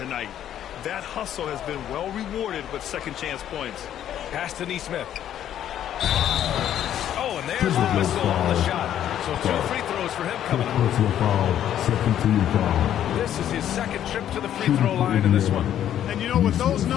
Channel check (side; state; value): right; quieter; 10.8 dB